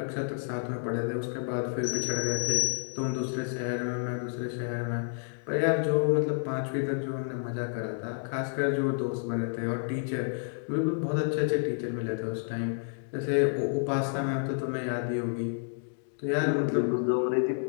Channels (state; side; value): silent; right; digital silence